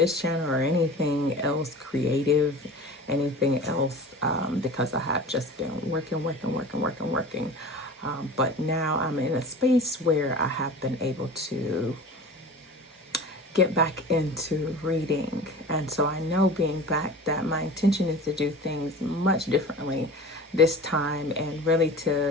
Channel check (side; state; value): both; normal; correlation 0.37